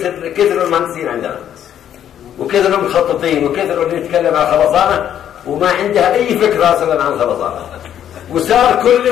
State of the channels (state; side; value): quieter; right; 10.2 dB